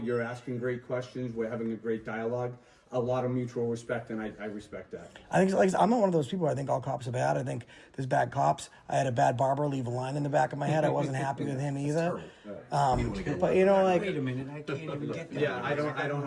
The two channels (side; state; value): both; identical; correlation 1.00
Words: asking great questions. We're having a great dialogue. A lot of mutual respect, and I respect that. I think like I'm not one of those people. I think all cops are bad. I think there's bad cops. I had a bad barber leave a line in the back of my head. I wasn't happy with him either. But you know, like, Wait a minute, I can't even get that. Yeah, I don't